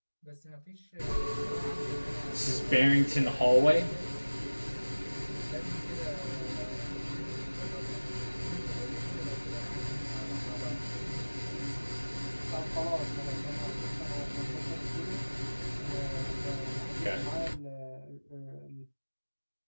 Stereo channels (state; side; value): inverted; both; correlation -1.00